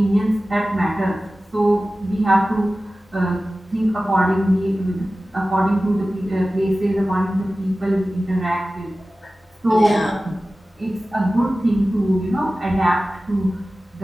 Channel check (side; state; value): both; normal; correlation 0.96